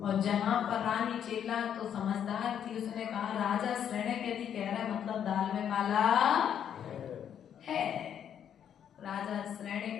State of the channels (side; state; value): right; quieter; 9.1 dB